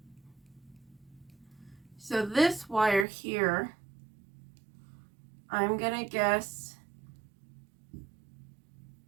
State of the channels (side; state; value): left; drops out; at 3.1 s